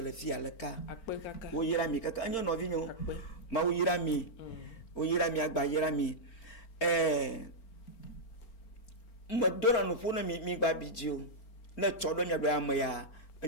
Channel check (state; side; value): late; right; 4.4 ms